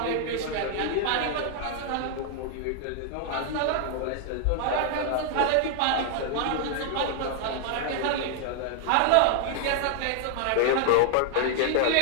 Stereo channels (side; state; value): both; different; correlation 0.00